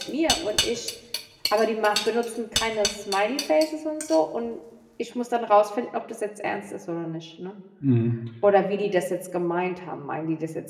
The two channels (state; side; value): identical; both; correlation 1.00